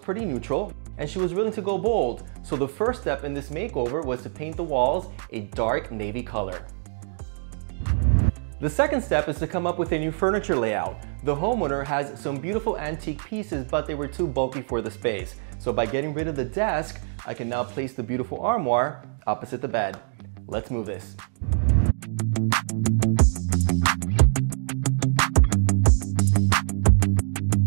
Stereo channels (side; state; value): left; silent; digital silence